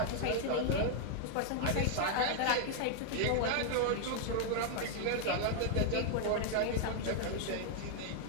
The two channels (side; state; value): both; different; correlation 0.00